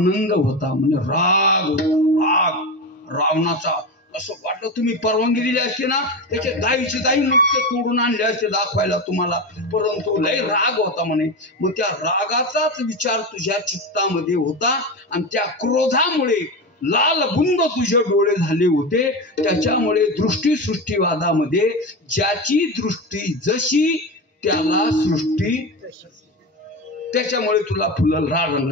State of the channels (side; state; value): both; normal; correlation 0.20